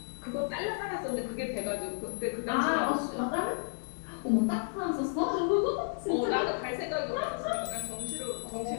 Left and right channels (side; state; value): right; silent; digital silence